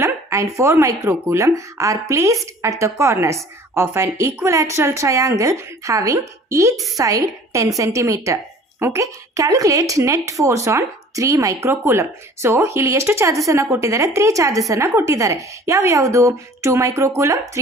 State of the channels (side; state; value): both; normal; correlation 0.49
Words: and 4 microcoulomb are placed at the corners of an equilateral triangle having each side 10 cm. Okay, calculate net force on 3 microcoulomb. So ಇಲ್ಲಿ ಎಷ್ಟು ಚಾರ್ಜಸ್ ಅನ್ನ ಕೊಟ್ಟಿದ್ದಾರೆ? 3 ಚಾರ್ಜಸ್ ಅನ್ನ ಕೊಟ್ಟಿದ್ದಾರೆ. ಯಾವುದು? 2 microcoulomb,